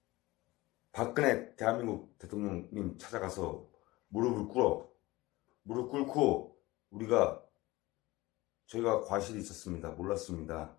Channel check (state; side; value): quieter; right; 20.0 dB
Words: 박근혜 대한민국 대통령님 찾아가서 무릎 꿇고 저희가 과실이 있었습니다. 몰랐습니다.